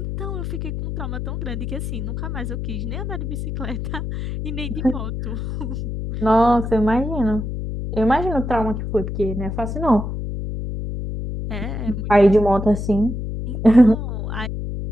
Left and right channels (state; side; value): noise; left; hum, 4 dB below the sound